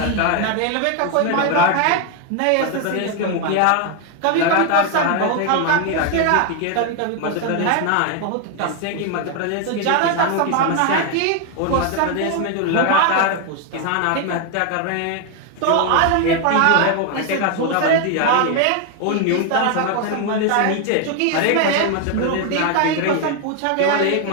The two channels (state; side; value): different; both; correlation 0.01